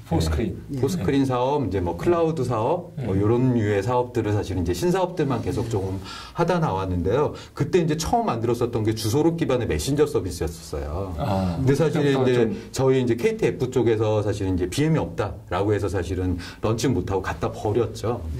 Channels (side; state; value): both; identical; correlation 1.00